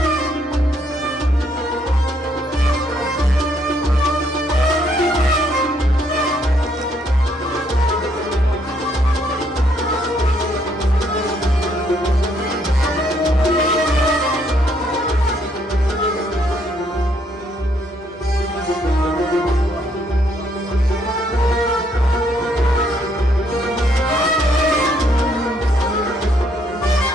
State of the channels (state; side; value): normal; both; correlation 0.70